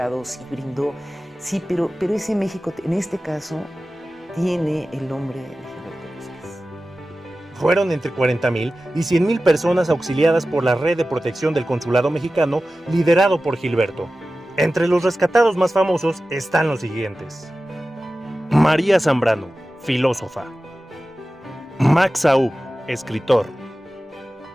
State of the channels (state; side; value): normal; both; correlation 0.95